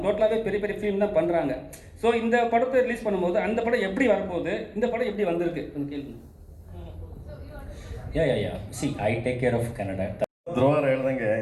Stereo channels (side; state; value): both; identical; correlation 1.00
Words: டோட்டலாகவே பெரிய பெரிய ஃபிலிம் தான் பண்ணுறாங்க. ஸோ இந்த படத்தை ரிலீஸ் பண்ணும்போது அந்த படம் எப்படி வரப்போகுது, இந்த படம் எப்படி வந்திருக்கு அந்த கேள்வி. See I take care of Kannada. ಧ್ರುವರ ಹೇಳ್ದಂಗೆ